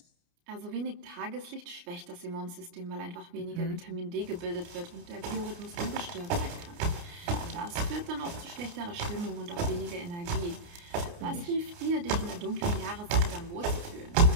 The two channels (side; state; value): left; late; 29 ms